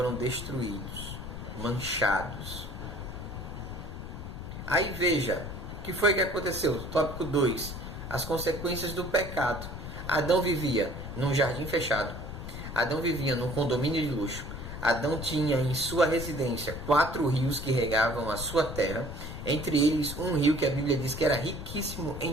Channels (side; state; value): left; noise; rumble, 8 dB below the sound